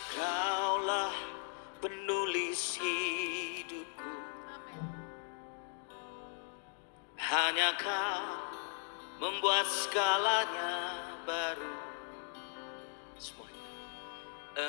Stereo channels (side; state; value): right; silent; 52 dB below the other